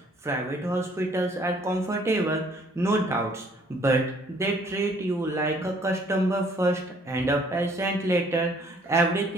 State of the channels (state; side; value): normal; both; correlation 0.60